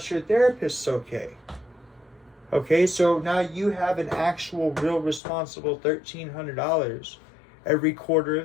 your therapist's okay. Okay, so now you have an actual, real responsible $1,300 every quarter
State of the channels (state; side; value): drops out; right; at 5.2 s